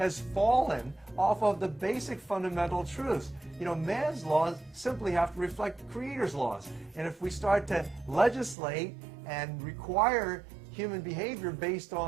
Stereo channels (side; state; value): left; drops out; at 8.6 s